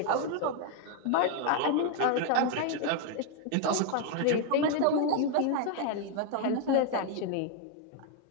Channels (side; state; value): both; different; correlation 0.01